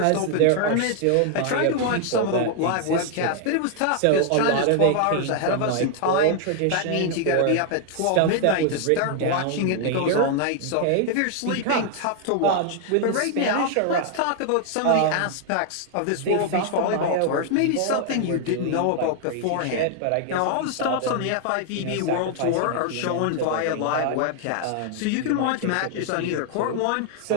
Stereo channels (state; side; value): different; both; correlation 0.00